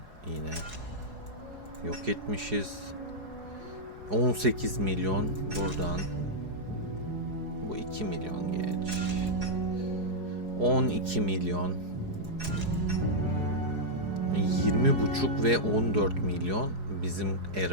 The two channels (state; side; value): late; left; 4.8 ms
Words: yine yok etmişiz. 18 milyon buradan. Bu 2 milyon geç. 12 milyon. 20,5 ve 14 milyon bizim